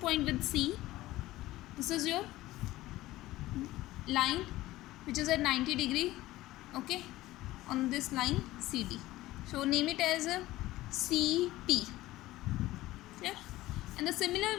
with C. This is your line which is at 90 degree. Okay, on this line CD. So name it as a CP. And the similar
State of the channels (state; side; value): quieter; right; 17.0 dB